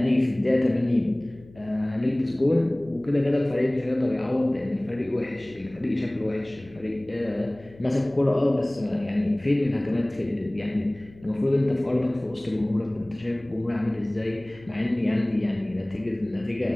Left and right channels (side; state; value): left; noise; hum, 23 dB below the sound